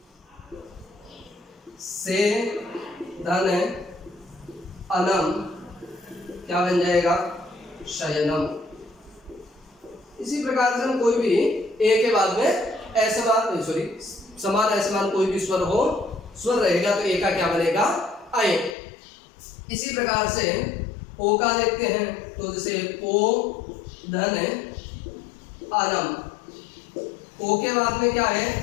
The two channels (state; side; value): drops out; right; at 18.8 s